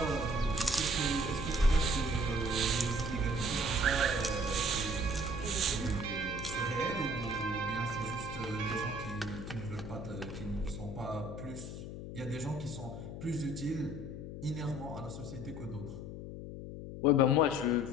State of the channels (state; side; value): noise; left; hum, 9 dB below the sound